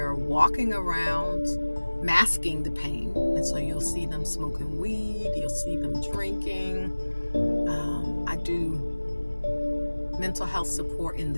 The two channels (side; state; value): both; inverted; correlation -1.00